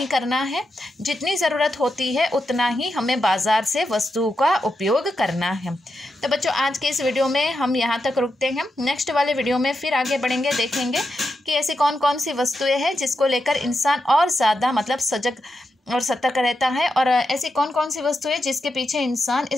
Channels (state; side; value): normal; both; correlation 0.86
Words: करना है। जितनी ज़रूरत होती है उतना ही हमें बाज़ार से वस्तुओं का उपयोग करना है। तो बच्चों आज के इस वीडियो में हम यहाँ तक रुकते हैं। नेक्स्ट वाले वीडियो में फिर आगे बढ़ेंगे, देखेंगे कि ऐसी कौन कौन सी वस्तुएं हैं जिसको लेकर इंसान और ज़्यादा मतलब सजग और सतर्क रहता है, और ऐसी कौन कौन सी वस्तुएं जिसके पीछे इंसान